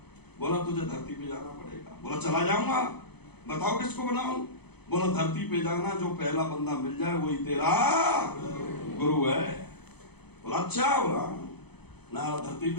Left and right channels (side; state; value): right; late; 0.98 ms